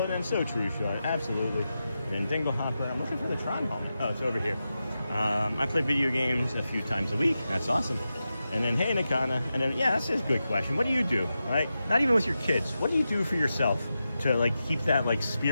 and then so true, Sean. Absolutely. And then Dingle Hopper. I'm looking for the Tron helmet. Oh, it's over here. I play video games a few times a week. That's awesome. And then, hey, Nakana. And then, yeah, that's a good question. What do you do, right? Not even with your kids. What do you do for yourself to, like, keep that, like,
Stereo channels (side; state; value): both; inverted; correlation -0.90